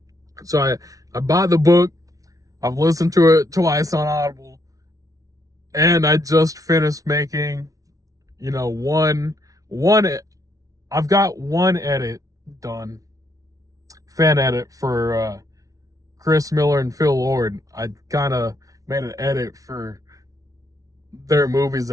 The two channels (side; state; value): left; late; 0.17 ms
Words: So I bought the book. I've listened to it twice on Audible, and I just finished making, I've got one edit done, fan edit for Chris Miller and Phil Lord. I kind of made an edit for their movies